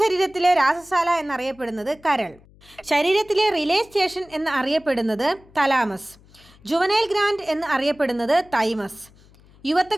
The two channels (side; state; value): left; noise; hum, 27 dB below the sound